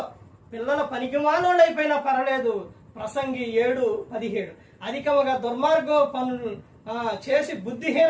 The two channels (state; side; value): identical; both; correlation 1.00